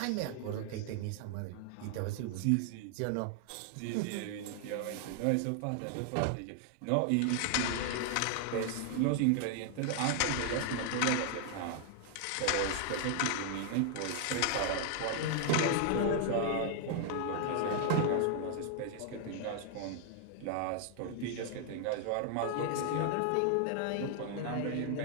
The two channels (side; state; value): both; different; correlation 0.00